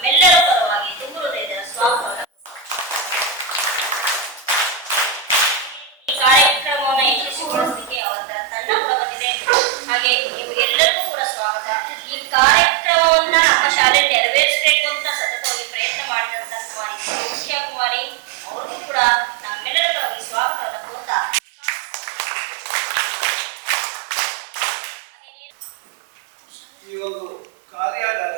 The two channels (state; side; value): drops out; left; at 8.0 s